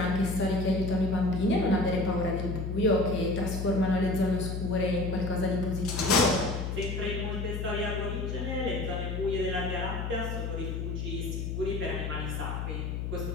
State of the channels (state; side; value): noise; left; hum, 3 dB below the sound